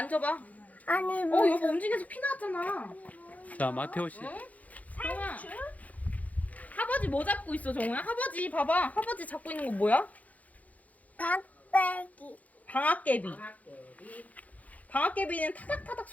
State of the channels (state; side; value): late; right; 0.074 ms